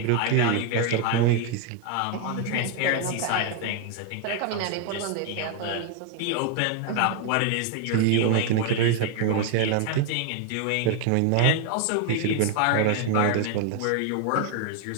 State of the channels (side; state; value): both; different; correlation 0.00